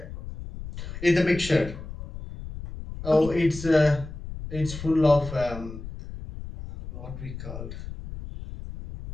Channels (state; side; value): noise; left; rumble, 11 dB below the sound